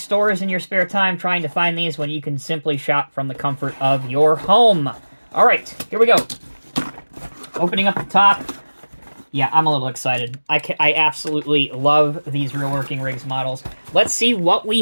in your spare time trying to find these when you can simply shop from the comfort of your home. All right, here we go. Opening up the top. Yeah, I'm a little excited. I absolutely love these Real Working Rigs models. Let's see what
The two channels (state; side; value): inverted; both; correlation -1.00